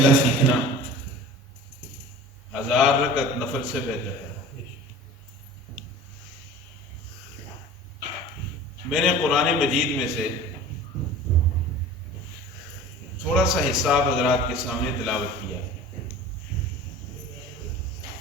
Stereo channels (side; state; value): both; normal; correlation 0.39